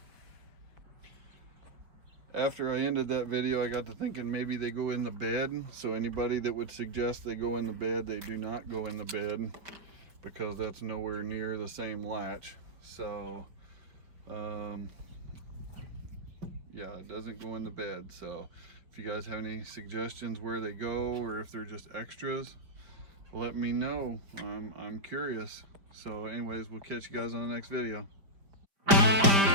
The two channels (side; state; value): left; late; 5.0 ms